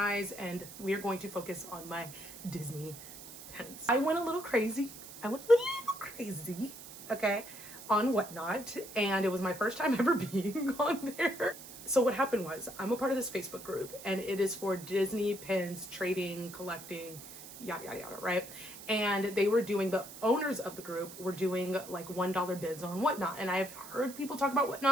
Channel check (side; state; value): right; noise; hiss, 14 dB below the sound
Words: and we are going to focus on my Disney pens. I went a little crazy. Okay, on Whatnot, and it was my first time ever being on there. So what happened was, I'm a part of this Facebook group, and it is for Disney pins, trading, collecting, yada, yada, yada, right? And they were doing, the owners of the group were doing like $1 bids on Whatnot. And I've heard people talk about